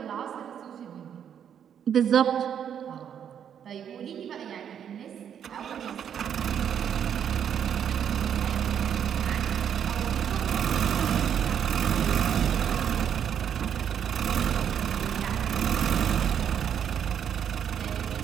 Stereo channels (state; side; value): quieter; left; 8.7 dB